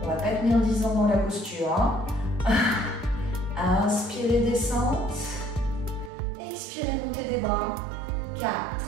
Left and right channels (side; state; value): left; drops out; at 6.1 s